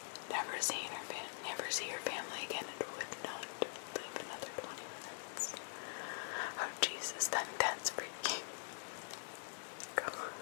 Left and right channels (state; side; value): silent; right; digital silence